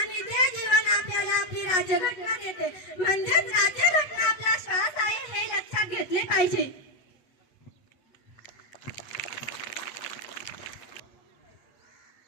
ते जीवन आपल्याला आपली राज्यघटना देते, म्हणजेच राज्यघटना आपला श्वास आहे हे लक्षात घेतले पाहिजे।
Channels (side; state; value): right; late; 8.3 ms